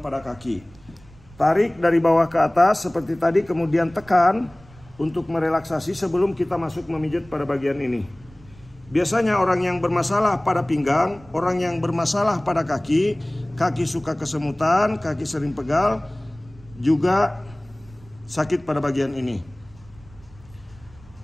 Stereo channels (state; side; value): noise; right; rumble, 24 dB below the sound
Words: kaki. Tarik dari bawah ke atas seperti tadi, kemudian tekan untuk merelaksasi sebelum kita masuk memijat pada bagian ini. Biasanya orang yang bermasalah pada pinggang, orang yang bermasalah pada kaki, kaki suka kesemutan, kaki sering pegal, juga sakit pada bagian ini.